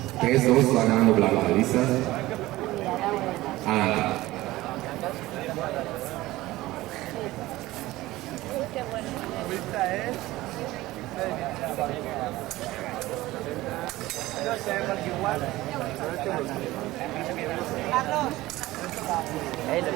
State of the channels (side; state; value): left; quieter; 17.7 dB